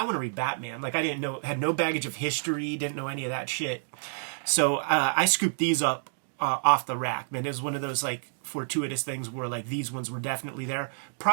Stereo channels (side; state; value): left; silent; digital silence